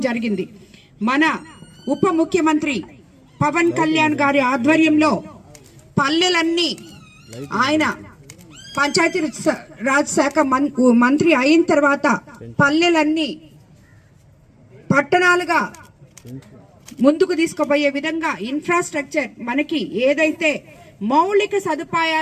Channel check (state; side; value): identical; both; correlation 1.00